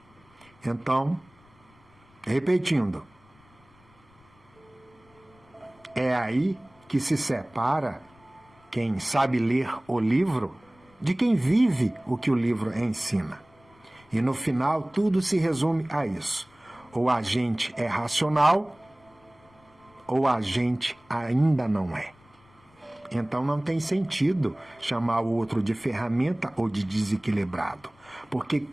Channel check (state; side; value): noise; left; rumble, 30 dB below the sound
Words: Então, repetindo, é aí que se separa quem sabe ler o livro de quem vive o que o livro ensina. E no final, tudo se resume a isso. Ou a gente é racional, ou a gente ainda não é. Então não tem sentido chamar o outro de ferramenta ou de desequilibrado. Porque